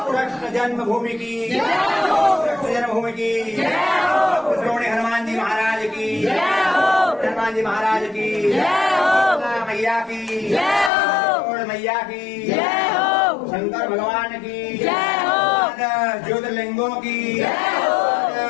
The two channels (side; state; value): right; drops out; at 10.9 s